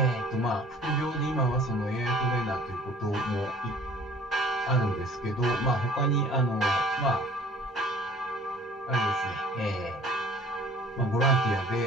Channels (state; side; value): normal; both; correlation 0.50